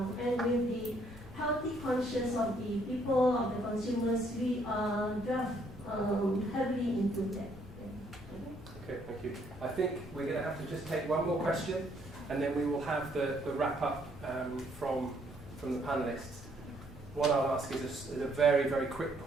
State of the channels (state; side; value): normal; both; correlation 0.68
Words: And with the healthy conscience of the people, of the consumers, we are heavily into that. Okay, thank you. I think we're going to have to just take one more question, and then we will have the wrap up from the panelists. What I'll ask is a very, very quick